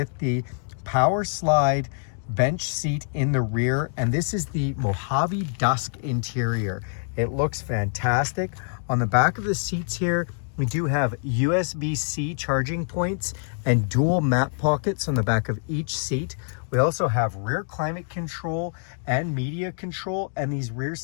the power slide bench seat in the rear. And this is the Mojave Dusk interior. It looks fantastic. On the back of the seats here, we do have USB-C charging points and dual map pockets on the back of each seat. We also have rear climate control and media control, and these rear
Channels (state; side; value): silent; right; digital silence